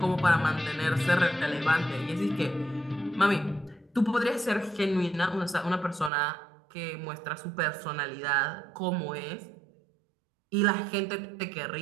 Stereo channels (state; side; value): drops out; left; at 6.1 s